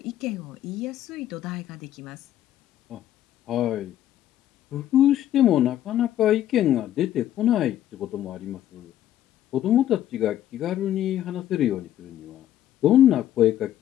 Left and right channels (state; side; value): quieter; right; 12.0 dB